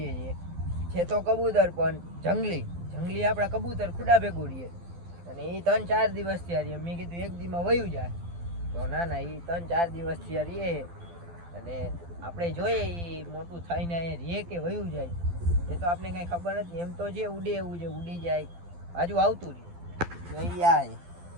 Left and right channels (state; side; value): late; left; 12 ms